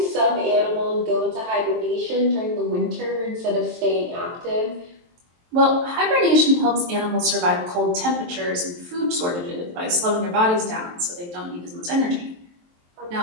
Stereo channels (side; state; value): left; late; 23 ms